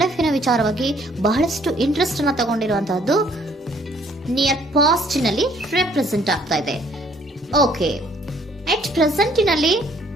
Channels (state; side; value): normal; both; correlation 0.62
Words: ಲೈಫ್ ನ ವಿಚಾರವಾಗಿ ಬಹಳಷ್ಟು ಇಂಟ್ರೆಸ್ಟ್ ಅನ್ನ ತಗೊಂಡಿರುವಂತಹದ್ದು ನಿಯರ್ ಪಾಸ್ಟ್ ನಲ್ಲಿ ರೆಪ್ರೆಸೆಂಟ್ ಆಗ್ತಾ ಇದೆ. ಓಕೆ, ಎಟ್ ಪ್ರೆಸೆಂಟ್ ನಲ್ಲಿ